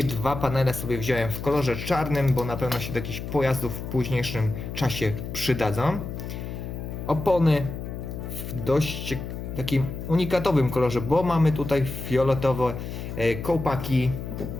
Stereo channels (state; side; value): noise; left; hum, 7 dB below the sound